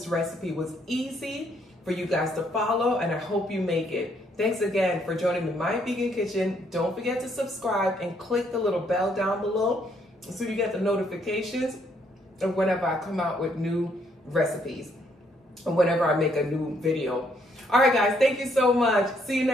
recipe was easy for you guys to follow, and I hope you make it. Thanks again for joining me in my vegan kitchen. Don't forget to subscribe and click the little bell down below so you get the notifications whenever I come out with new recipes or whenever I make a new video. All right, guys, thank you so much. See you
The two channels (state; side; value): normal; both; correlation 0.70